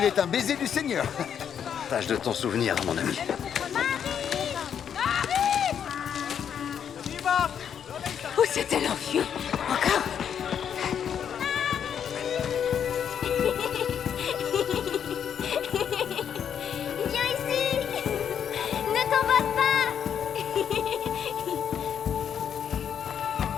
est un baiser du Seigneur. Tâche de t'en souvenir, mon ami. Où s'est-elle enfuie? Encore? Viens ici! Ne t'emballe pas!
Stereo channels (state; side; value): quieter; right; 8.3 dB